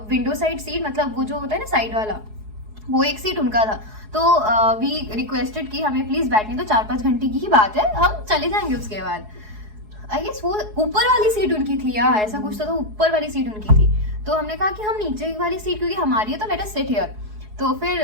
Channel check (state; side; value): late; left; 4.7 ms